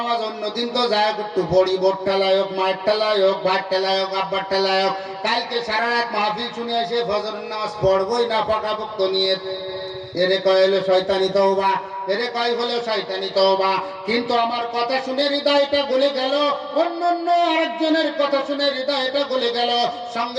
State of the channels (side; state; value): both; identical; correlation 1.00